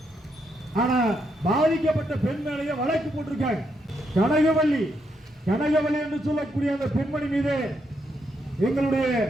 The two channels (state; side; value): normal; both; correlation 0.78